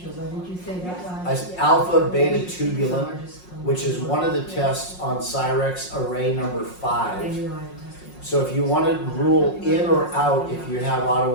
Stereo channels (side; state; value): right; late; 5.5 ms